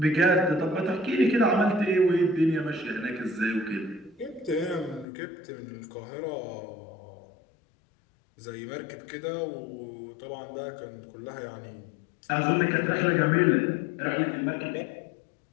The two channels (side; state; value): right; drops out; at 5.1 s